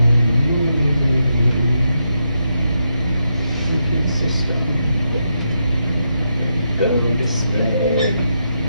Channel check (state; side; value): inverted; both; correlation -0.82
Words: System. Go display.